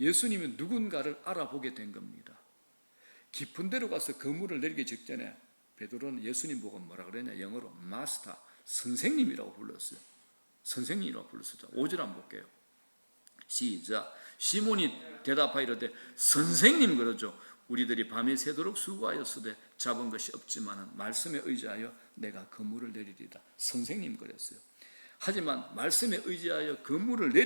누군가를 알아보게 된 겁니다. 깊은 데로 가서 그물을 내리기 직전에 베드로는 예수님 보고 뭐라 그러냐? 영어로 마스터, 선생님이라고 불렀어요. 선생님이라고 불렀어요. 5절 한번 볼게요. 시작. 시몬이 대답하여 이르되 선생님 그러죠. 우리들이 밤이 새도록 수고하였으되 잡은 것이 없지만 말씀에 의지하여 내가 그물을 내리리다. 선생님 그랬어요. 하지만 말씀에 의지하여 그물을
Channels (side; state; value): both; inverted; correlation -1.00